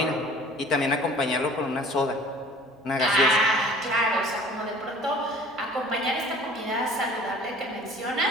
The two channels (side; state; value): both; normal; correlation 0.49